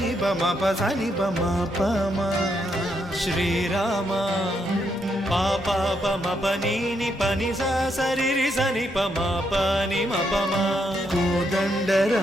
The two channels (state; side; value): normal; both; correlation 0.77